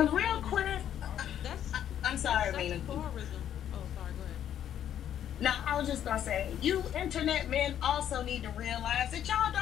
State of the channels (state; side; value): quieter; right; 10.2 dB